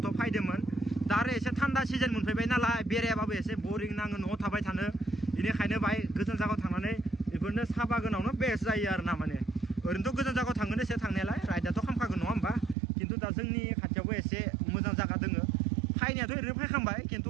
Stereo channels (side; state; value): left; drops out; at 12.8 s